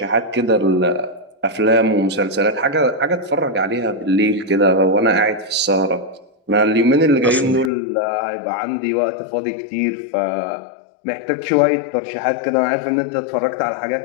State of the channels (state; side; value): drops out; right; at 7.7 s